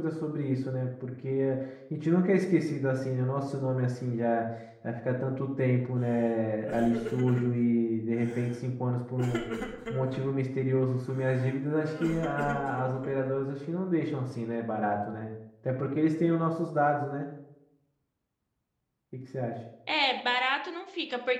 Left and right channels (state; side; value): identical; both; correlation 1.00